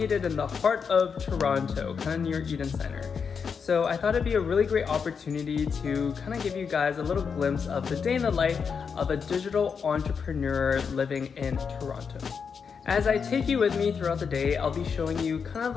in the heart of Toronto, kind of near Eden Centre. So I thought it'd be a really great opportunity to kind of give you guys a little glimpse of the day in the life of a digital entrepreneur living in Toronto. As I take you with me throughout the day, I'll be showing you kind of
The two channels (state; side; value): quieter; right; 6.1 dB